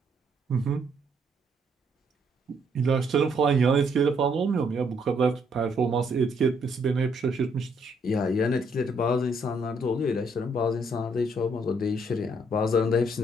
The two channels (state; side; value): normal; both; correlation 0.70